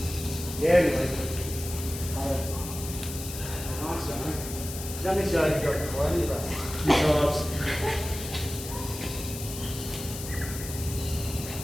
Yeah, good. Nice one. Done this yoga joke before, haven't you, Russ? Few times.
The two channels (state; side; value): noise; left; hiss, 9 dB below the sound